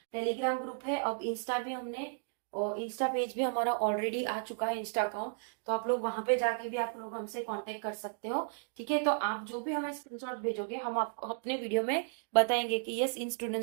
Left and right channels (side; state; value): left; silent; digital silence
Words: टेलीग्राम ग्रुप है, अब इंस्टा भी हमने, और इंस्टा पेज भी हमारा ऑलरेडी आ चुका है, इंस्टा अकाउंट, तो आप लोग वहां पे जाके भी आप लोग हमसे कांटेक्ट कर सकते हो। ठीक है, तो आप जो भी हमें स्क्रीनशॉट भेजोगे हम आपको अपने वीडियो में बताएंगे कि यस इन